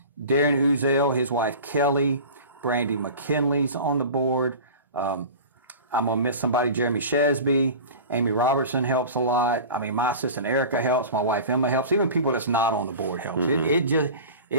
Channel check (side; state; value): both; inverted; correlation -0.36